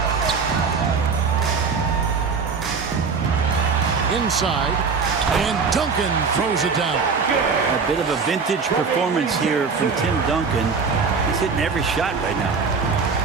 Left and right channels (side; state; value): left; quieter; 5.1 dB